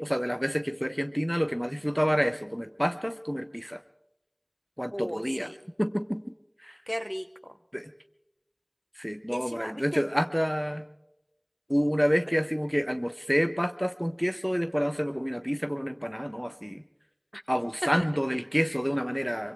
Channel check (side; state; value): both; identical; correlation 1.00